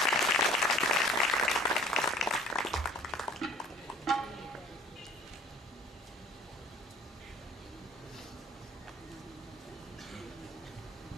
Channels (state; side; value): normal; both; correlation 0.51